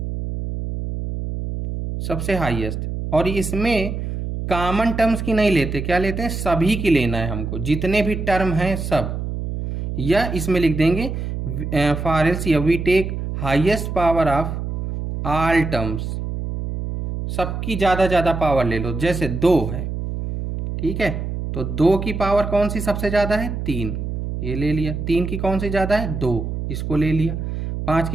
सबसे हाईएस्ट, और इसमें कॉमन टर्म्स की नहीं लेते, क्या लेते हैं, सभी की लेना है हमको, जितने भी टर्म हैं सब। या इसमें लिख देंगे for LCM we take highest power of all terms, सबकी ज़्यादा पावर ले लो। जैसे 2 है, ठीक है, तो 2 की पावर कौन सी सबसे ज़्यादा है, 3, ये ले लिया। 3 की कौन सी ज़्यादा है, 2, इसको ले लिया। 5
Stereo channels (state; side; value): noise; right; hum, 4 dB below the sound